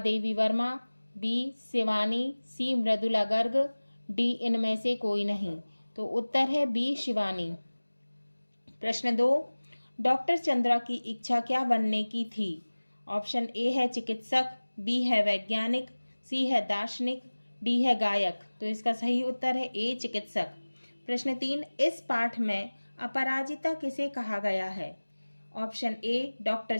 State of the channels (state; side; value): inverted; both; correlation -1.00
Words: Verma, B Shivani, C Mridula Garg, D इनमें से कोई नहीं। तो उत्तर है बी शिवानी। प्रश्न 2, डॉक्टर चंद्रा की इच्छा क्या बनने की थी? ऑप्शन ए है चिकित्सक, बी है वैज्ञानिक, सी है दार्शनिक, डी है गायक। तो इसका सही उत्तर है ए चिकित्सक। प्रश्न 3, इस पाठ में अपराजिता किसे कहा गया है? ऑप्शन ए डॉक्टर